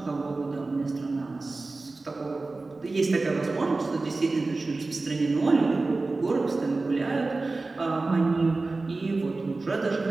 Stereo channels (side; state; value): left; quieter; 3.5 dB